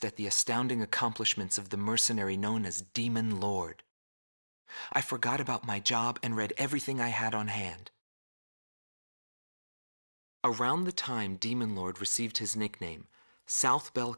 at the astounding accomplishments of the mercenary known as Demon Lord. I forgot about my job and read everything I had on hand. Around the time Demon Lord received his nickname, South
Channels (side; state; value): both; inverted; correlation -1.00